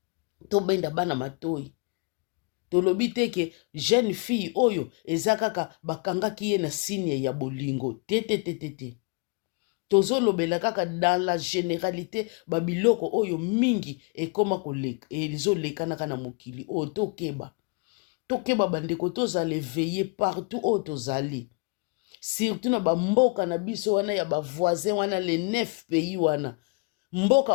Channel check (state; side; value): quieter; right; 33.3 dB